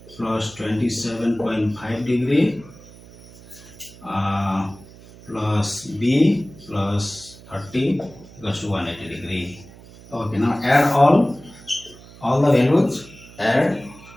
plus 27.5 degree plus b plus 30 equals to 180 degree. Okay, now add all the values. Add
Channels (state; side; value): noise; right; hum, 21 dB below the sound